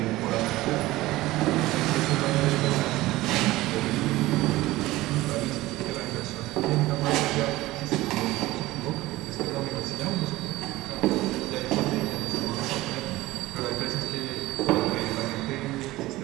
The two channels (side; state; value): left; quieter; 17.9 dB